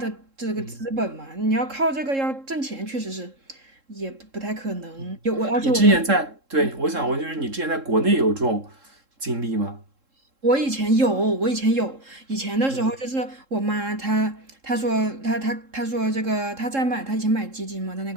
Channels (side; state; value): left; late; 3.7 ms